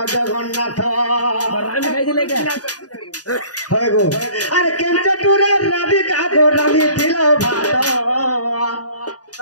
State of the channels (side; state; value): right; late; 0.68 ms